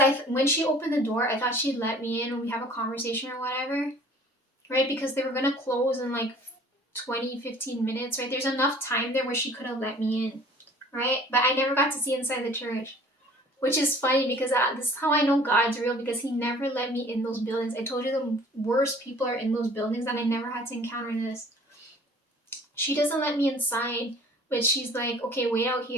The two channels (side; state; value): both; normal; correlation 0.50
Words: when she opened the door, I thought she'd let me in and we have a conversation or whatever, right? Because they were going to close in like 20-15 minutes, right? There's enough time there where she could have let me in, right? But I never got to see inside the church. Which is funny because this is how I know God's real, because he never let me in those buildings. I told you the worst people are in those buildings and I never had to encounter this. She doesn't let me inside, but she's like, okay, wait out